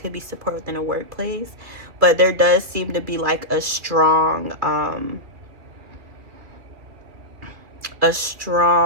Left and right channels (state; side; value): late; left; 2.7 ms